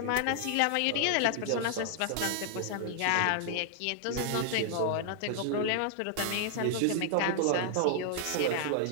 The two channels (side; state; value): both; different; correlation 0.00